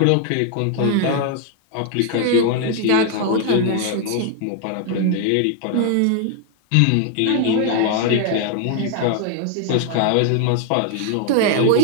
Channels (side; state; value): both; different; correlation 0.00